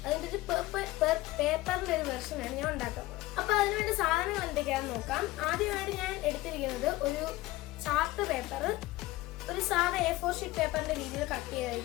അതിന്റെ ഒരു പേപ്പറിന്റെ ഒരു വെർഷനാണ് ഞാൻ ഉണ്ടാക്കാൻ പോകുന്നത്. അപ്പൊ അതിനുവേണ്ടി സാധനങ്ങൾ എന്തൊക്കെയാണെന്ന് നോക്കാം. ആദ്യമായിട്ട് ഞാൻ എടുത്തിരിക്കുന്നത് ഒരു ചാർട്ട് പേപ്പർ, ഒരു സാധാ A4 ഷീറ്റ് പേപ്പറിന്റെ രീതിയിൽ കട്ട്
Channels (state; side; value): quieter; right; 18.3 dB